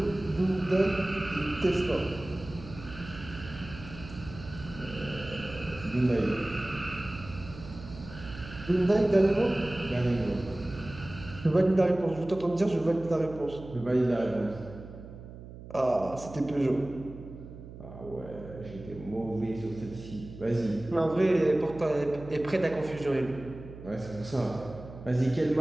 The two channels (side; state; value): right; noise; hum, 14 dB below the sound